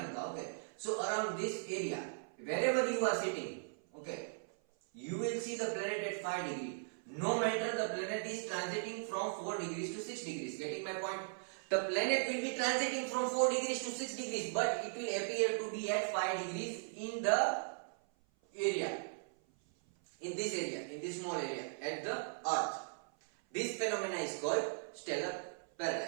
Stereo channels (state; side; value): silent; left; 52 dB below the other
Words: Okay. So around this area, wherever you are sitting, okay, you will see the planet at 5 degrees. No matter the planet is transiting from 4 degrees to 6 degrees. Getting my point? The planet will be transiting from 4 degrees to 6 degrees, but it will appear to be at 5 degrees in the area. In this area, in this small area, at the Earth. This phenomena is called stellar